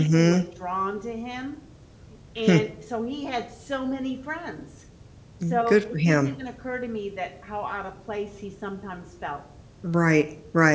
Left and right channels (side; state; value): both; identical; correlation 1.00